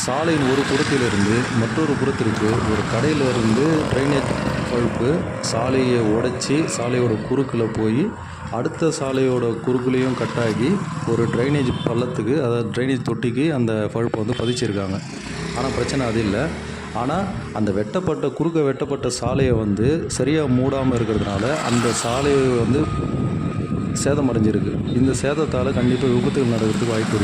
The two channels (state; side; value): identical; both; correlation 1.00